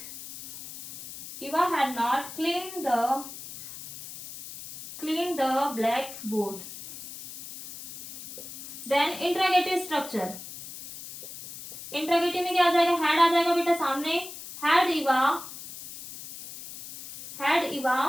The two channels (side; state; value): left; noise; hiss, 13 dB below the sound